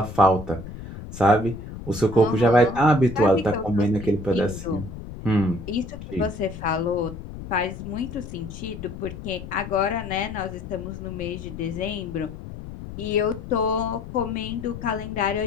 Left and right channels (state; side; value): noise; left; rumble, 11 dB below the sound